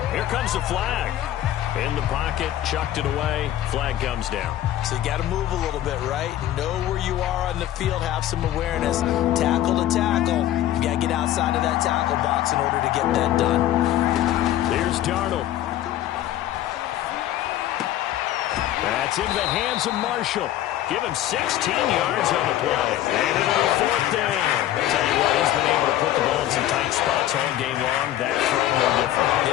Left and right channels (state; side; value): quieter; right; 13.0 dB